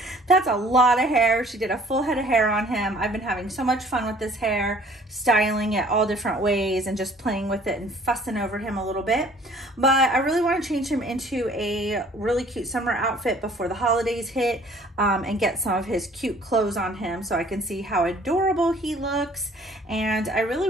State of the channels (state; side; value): normal; both; correlation 0.55